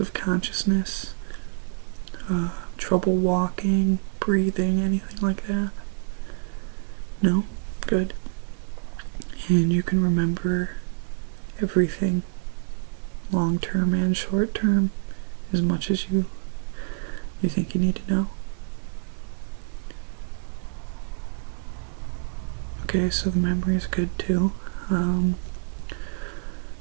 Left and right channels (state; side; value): silent; left; digital silence